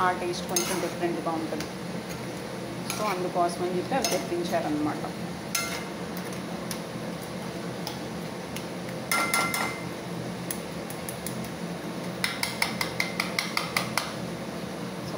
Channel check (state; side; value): identical; both; correlation 1.00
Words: ఆ టేస్ట్ కొంచెం డిఫరెంట్గా ఉంటుంది. సో అందుకోసమని చెప్పి అవి తెప్పించారనమాట.